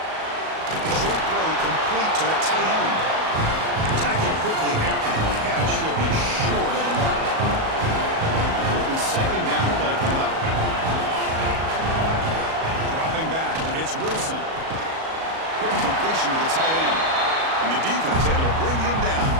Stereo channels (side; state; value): left; late; 37 ms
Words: Short throw complete to the tight end. Tackled quickly after the catch. He'll be short of the mark. Important second down play coming up. Dropping back. It's Wilson. Quick completion to the tight end. And the defense able to bring him down